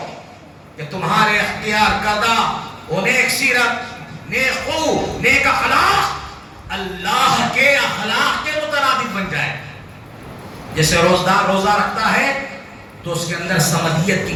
کہ تمہارے اختیار کردہ وہ نیک سیرت، نیک خو، نیک اخلاق اللہ کے اخلاق کے مترادف بن جائے۔ جیسے روزدار روزہ رکھتا ہے تو اس کے اندر سمدیت کی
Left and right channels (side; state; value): both; identical; correlation 1.00